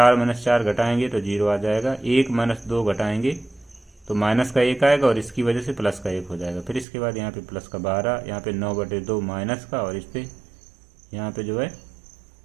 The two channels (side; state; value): left; drops out; at 6.9 s